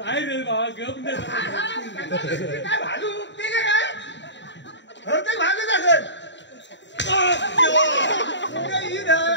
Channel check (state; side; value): late; right; 0.52 ms